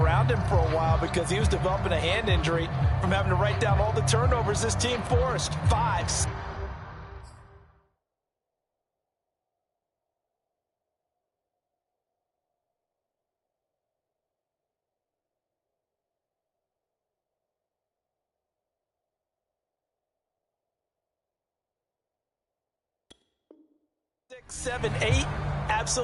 him for a while because he was developing a hand injury from having to write down all the turnovers this team forced. 5. Six, 7, 8,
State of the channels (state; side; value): identical; both; correlation 1.00